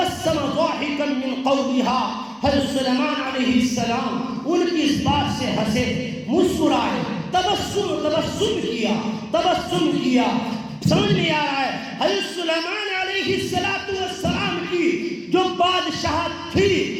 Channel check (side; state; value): both; identical; correlation 1.00